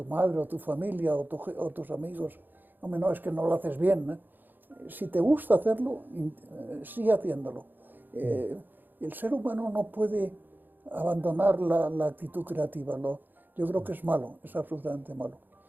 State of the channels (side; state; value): left; late; 0.090 ms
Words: madre, o tu familia, o tus amigos, hombre, no, es que no lo haces bien, ¿eh? Si te gusta hacerlo, sigue haciéndolo. El ser humano no puede abandonar la actitud creativa. Yo creo que es malo, es absolutamente malo.